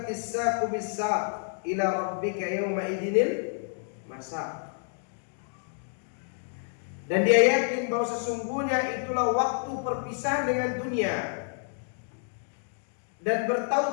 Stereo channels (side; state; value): right; silent; digital silence